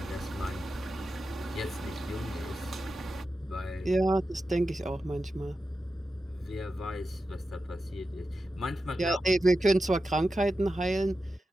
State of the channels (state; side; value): normal; both; correlation 0.91